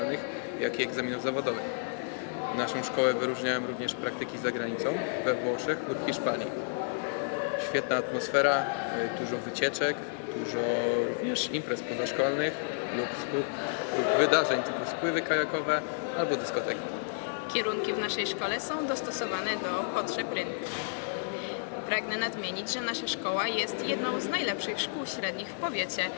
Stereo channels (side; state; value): right; silent; 57 dB below the other